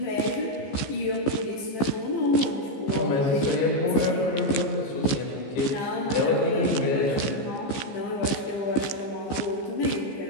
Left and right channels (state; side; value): late; right; 14 ms